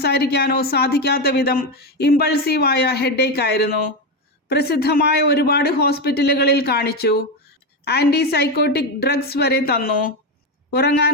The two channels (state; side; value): normal; both; correlation 0.12